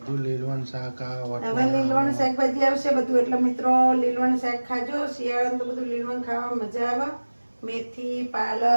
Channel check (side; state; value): both; inverted; correlation -1.00